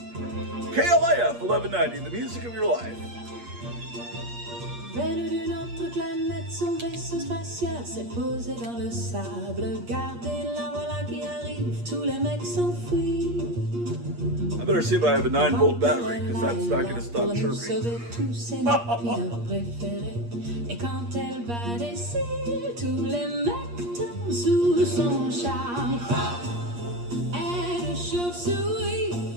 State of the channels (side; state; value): left; late; 8.5 ms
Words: KLIF 1190, the music of your life. Venu d'une autre planète, son vaisseau spatial s'est posé dans le sable. Gardez la voilà qui arrive, tous les mecs s'enfuient. I better see if I have a 9-volt battery, because that's not going to stop Pour nous chirping. sauver tous ses napines préférés. Et quand elle va d'ici, tous les mecs tombent sous son charme. Elle est chauve-souris,